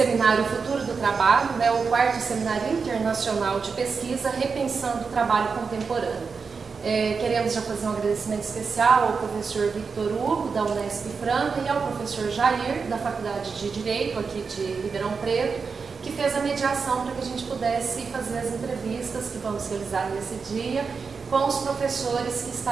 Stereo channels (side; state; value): left; quieter; 5.2 dB